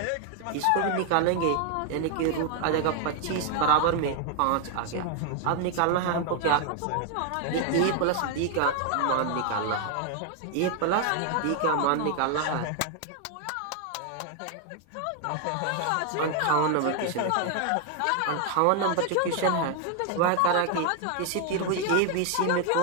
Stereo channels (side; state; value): both; different; correlation 0.00